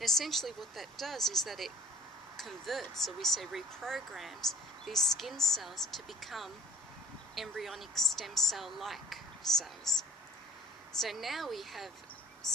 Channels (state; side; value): normal; both; correlation 0.51